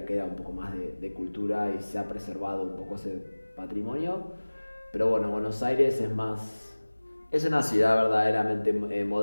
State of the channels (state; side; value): inverted; both; correlation -1.00